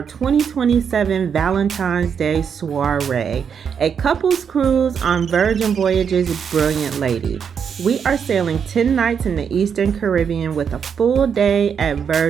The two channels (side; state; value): left; quieter; 7.1 dB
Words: 2027 Valentine's Day soiree, a couples cruise on Virgin Voyages Brilliant Lady. We are sailing 10 nights in the Eastern Caribbean with a full day at